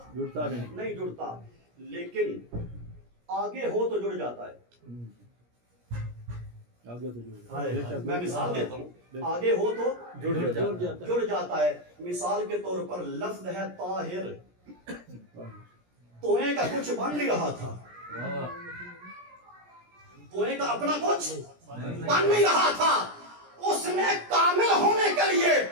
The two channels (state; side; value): late; left; 17 ms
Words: جڑتا نہیں جڑتا لیکن آگے ہو تو جڑ جاتا ہے میں مثال دیتا ہوں آگے ہو تو جڑ جاتا ہے مثال کے طور پر لفظ ہے طاہر توئیں کا کچھ بن نہیں رہا تھا توئیں کا اپنا کچھ بن نہیں رہا تھا اس نے کامل ہونے کے لیے